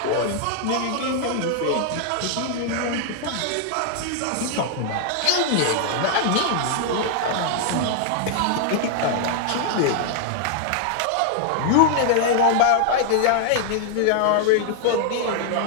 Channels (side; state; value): both; different; correlation -0.01